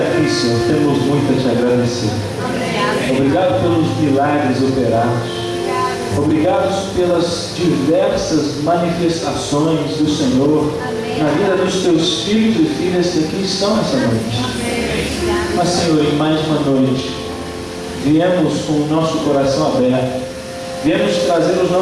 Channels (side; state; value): both; identical; correlation 1.00